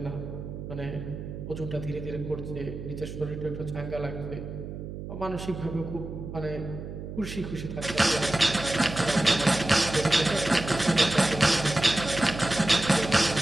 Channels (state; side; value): noise; right; hum, 9 dB below the sound